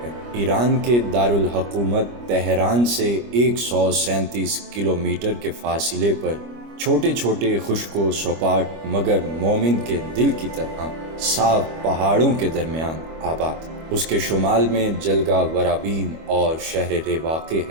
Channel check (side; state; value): left; late; 25 ms